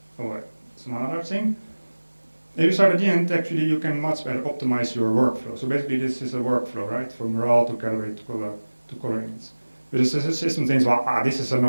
it's another thing. If you start at the end, actually you can much better optimize your workflow. So basically this is a workflow, right? From raw to calibrate to color image. But the system thinks, well, this is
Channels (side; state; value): both; inverted; correlation -1.00